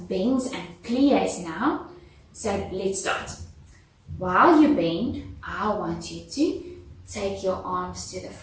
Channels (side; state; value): both; identical; correlation 1.00